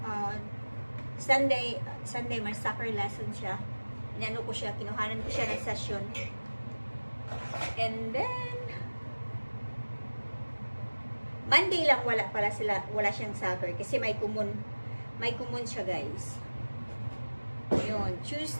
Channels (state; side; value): inverted; both; correlation -1.00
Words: Sunday may soccer lesson siya. Inano ko siya, kinuhanan ko siya ng session. And then, Monday lang wala siyang soccer kasi may kumon siya, guys. Yun,